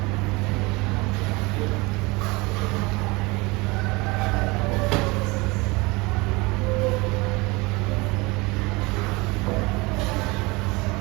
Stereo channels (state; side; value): quieter; left; 24.7 dB